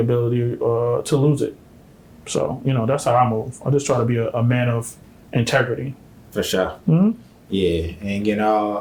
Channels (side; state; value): both; identical; correlation 1.00